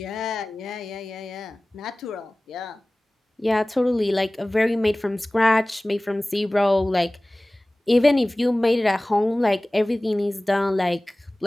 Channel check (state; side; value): normal; both; correlation 0.98